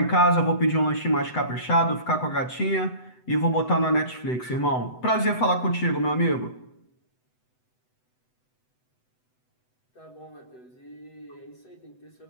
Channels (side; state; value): right; late; 7.9 ms